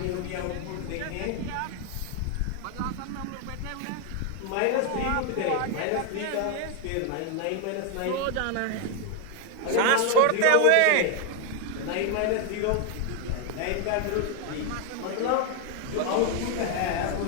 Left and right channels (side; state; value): both; different; correlation 0.01